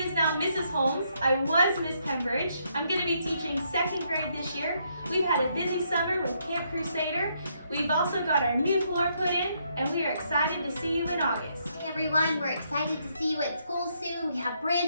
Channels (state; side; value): inverted; both; correlation -0.74